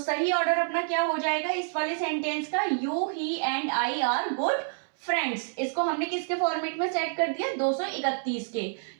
ऑर्डर अपना क्या हो जाएगा इस वाले सेंटेंस का? You, he and I are good friends. इसको हमने किसके फॉर्मेट में सेट कर दिया? 231 के,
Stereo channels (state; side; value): silent; left; 59 dB below the other